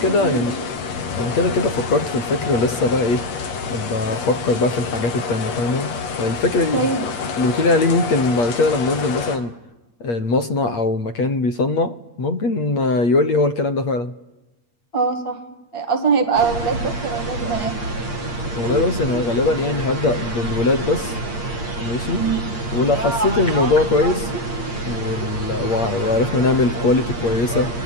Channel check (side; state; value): right; late; 8.5 ms